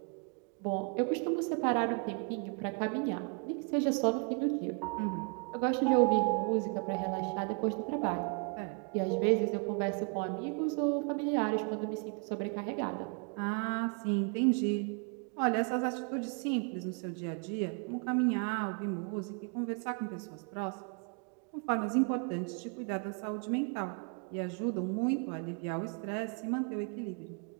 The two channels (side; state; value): left; quieter; 37.9 dB